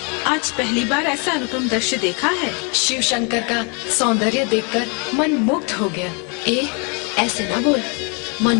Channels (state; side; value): quieter; right; 34.2 dB